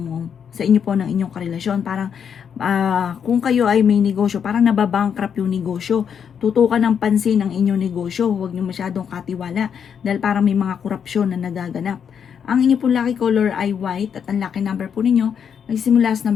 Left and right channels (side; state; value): right; quieter; 7.6 dB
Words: sa inyo po ng inyong karelasyon. Parang kung kayo ay may negosyo, parang nababankrupt yung negosyo. Tutukan ng pansin ang inyong negosyo. Huwag nyo masyadong katiwala dahil parang may mga korupsyon na nagaganap. Ang inyo pong lucky color ay white at ang lucky number po ninyo nagsimula sa